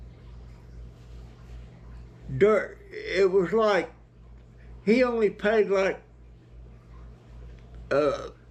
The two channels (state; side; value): identical; both; correlation 1.00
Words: It was like, he only paid like